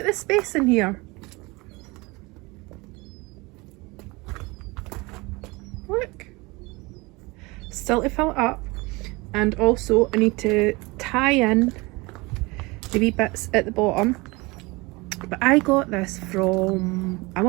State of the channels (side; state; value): left; quieter; 24.4 dB